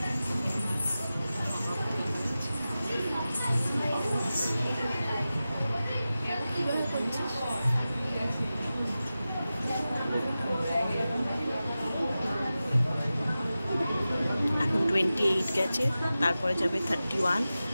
এখন 28 গেছে, তারপরে যাবে 31,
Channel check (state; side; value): inverted; both; correlation -0.94